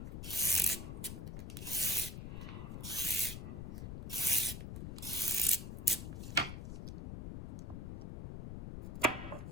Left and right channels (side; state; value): left; noise; rumble, 7 dB below the sound